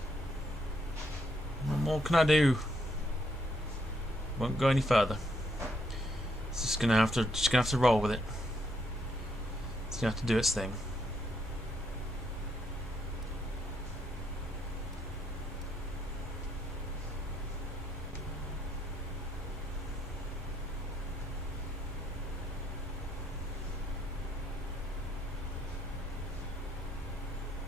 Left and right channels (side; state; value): both; normal; correlation 0.74